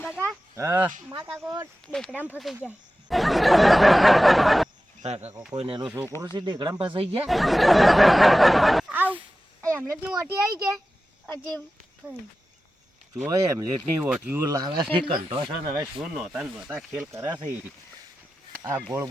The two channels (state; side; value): normal; both; correlation 0.94